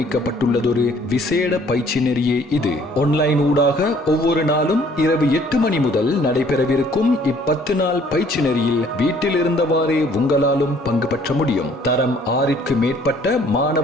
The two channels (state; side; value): normal; both; correlation 0.59